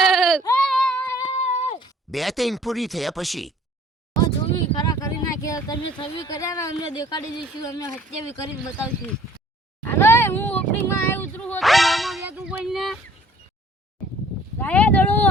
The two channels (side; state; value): both; normal; correlation 0.55